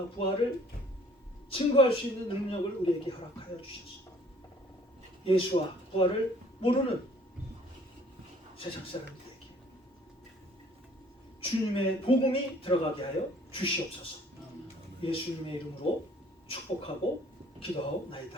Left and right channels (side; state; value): both; normal; correlation 0.56